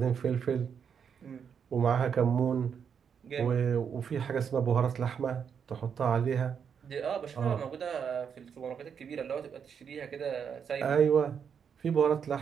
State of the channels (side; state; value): left; quieter; 7.2 dB